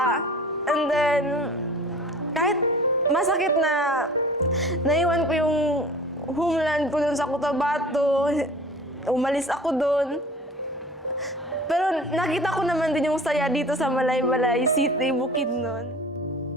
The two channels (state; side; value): normal; both; correlation 0.43